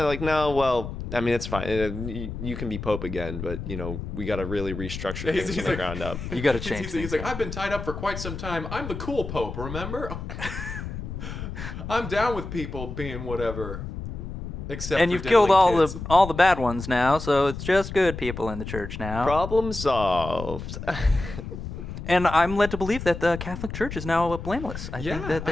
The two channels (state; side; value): noise; left; rumble, 8 dB below the sound